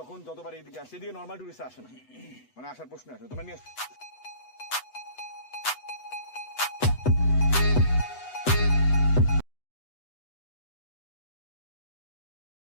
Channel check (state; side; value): late; right; 8.1 ms